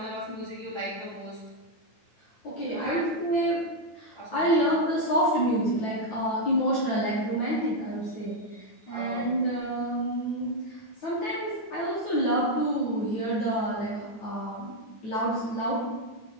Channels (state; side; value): late; right; 9.2 ms